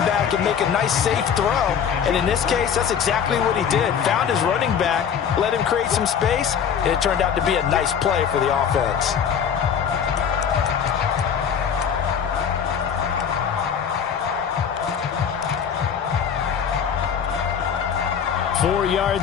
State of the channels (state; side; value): quieter; right; 7.7 dB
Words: back and make a nice, safe throw. And in this case, that's exactly what he did. Found his running back, let him create some space, and it turned out to be a nice play for the offense. Four